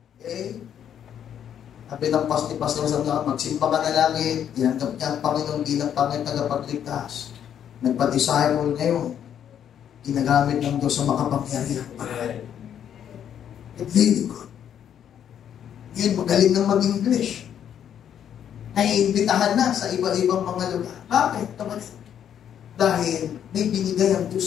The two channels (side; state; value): right; quieter; 9.3 dB